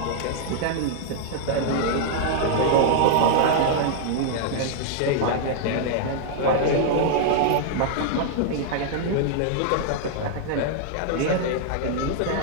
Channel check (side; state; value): both; different; correlation -0.01